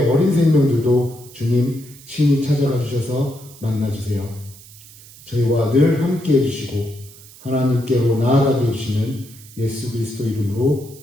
어린 생명들도 주님 친히 찾아가 주셔서 만나주세요. 저희와 늘 함께 해주시고 하나님께로 나아가게 해주시는 예수 그리스도 이름으로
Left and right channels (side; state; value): right; noise; hiss, 21 dB below the sound